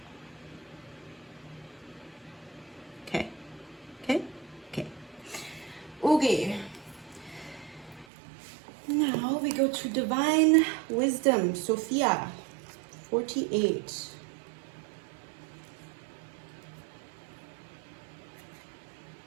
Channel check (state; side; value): drops out; left; at 8.1 s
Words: Okay, okay, okay. Okay. Now we go to Divine Wisdom, Sophia, 48.